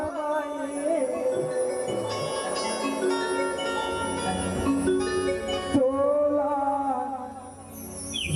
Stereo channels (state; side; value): identical; both; correlation 1.00